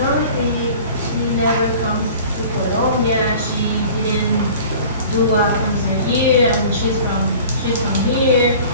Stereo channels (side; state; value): both; inverted; correlation -0.44